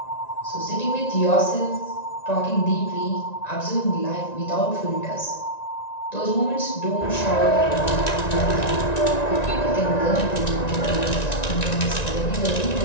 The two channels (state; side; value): late; right; 1.9 ms